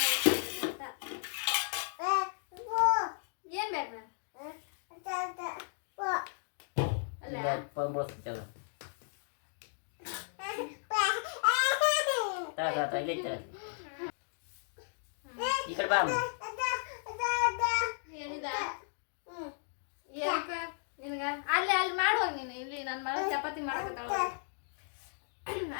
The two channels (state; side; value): silent; right; digital silence